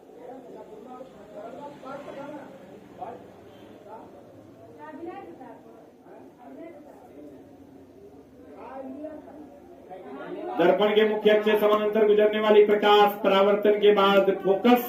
दर्पण के मुख्य अक्ष से समानांतर गुजरने वाली प्रकाश परावर्तन के बाद फोकस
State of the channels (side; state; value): both; identical; correlation 1.00